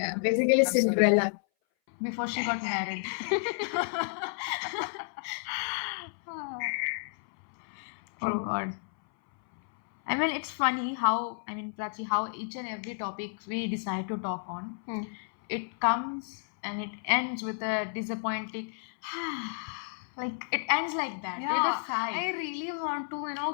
Basically, Cinderella. Before she got married. Oh God. I mean, it's funny how, Prachi, how each and every topic we decide to talk on, it comes and it ends with a disappointing, like it ends like that, with Yeah, a sigh. I really want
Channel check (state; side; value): silent; right; 57 dB below the other